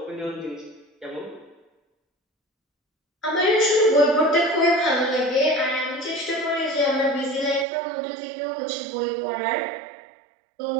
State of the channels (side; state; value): left; drops out; at 7.7 s